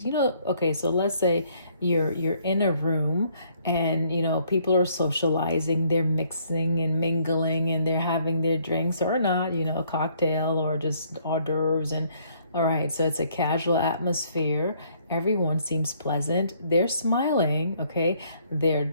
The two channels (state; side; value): inverted; both; correlation -0.65